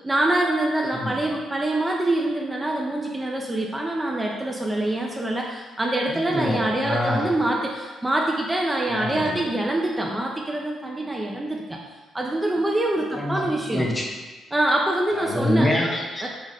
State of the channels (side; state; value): both; normal; correlation 0.87